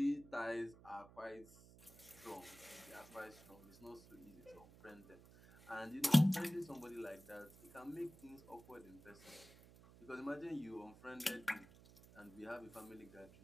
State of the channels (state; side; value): noise; right; hum, 20 dB below the sound